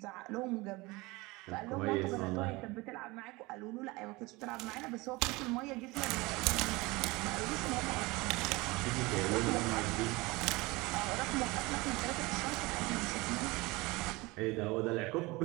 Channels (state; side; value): quieter; left; 23.0 dB